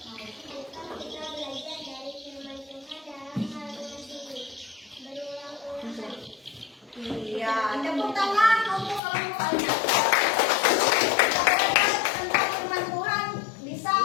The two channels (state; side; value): drops out; right; at 9.0 s